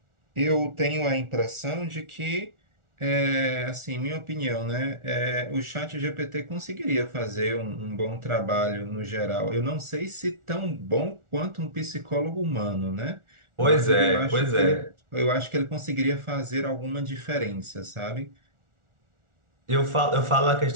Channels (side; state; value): left; late; 1.4 ms